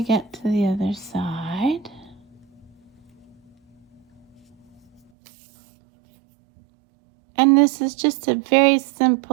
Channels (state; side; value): drops out; left; at 5.0 s